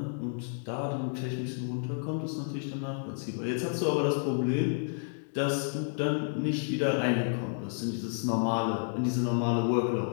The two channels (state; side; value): silent; right; digital silence